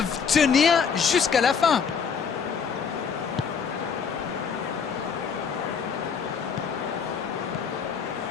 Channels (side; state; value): right; quieter; 6.4 dB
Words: tenir jusqu'à la fin?